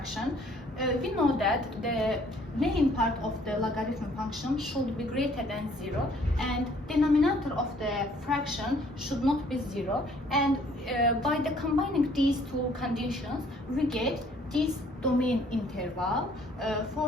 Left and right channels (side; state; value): both; normal; correlation 0.60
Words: We know that the main part of the logarithm function should be greater than 0 and denominator of the fraction should not be 0, and by the combining these two conditions we get this domain interval